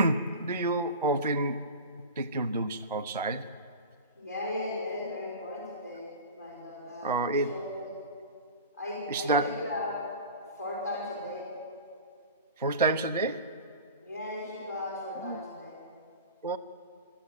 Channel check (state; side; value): inverted; both; correlation -0.33